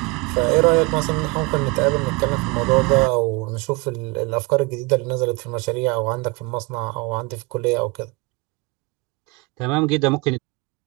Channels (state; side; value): quieter; left; 26.8 dB